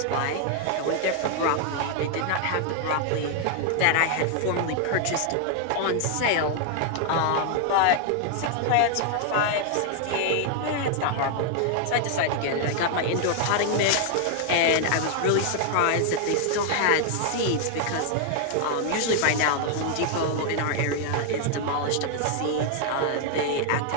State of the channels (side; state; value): both; different; correlation 0.00